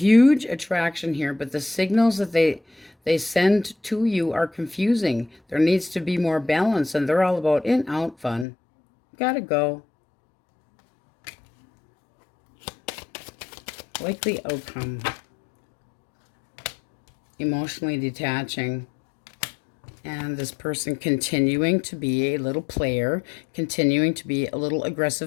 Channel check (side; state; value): right; drops out; at 8.5 s